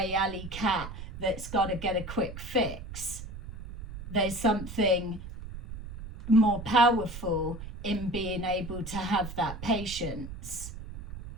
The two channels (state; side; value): noise; right; rumble, 10 dB below the sound